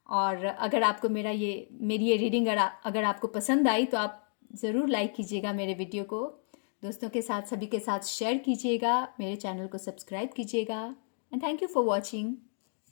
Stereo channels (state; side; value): silent; right; digital silence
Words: और अगर आपको मेरी ये रीडिंग अगर आपको पसंद आई तो आप ज़रूर लाइक कीजिएगा मेरे वीडियो को, दोस्तों के साथ, सभी के साथ शेयर कीजिएगा, मेरे चैनल को सब्सक्राइब कीजिएगा। And thank you for watching.